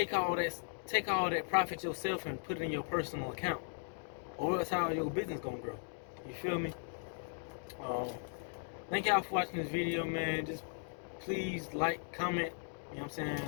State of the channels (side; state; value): right; silent; digital silence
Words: all that profit yourself and put it in your personal account, or else how your business gonna grow. You feel me? Thank y'all for watching this video, man. Just please like, comment, you know what I'm